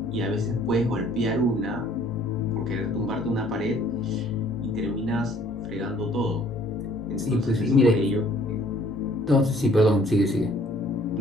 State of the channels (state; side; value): normal; both; correlation 0.58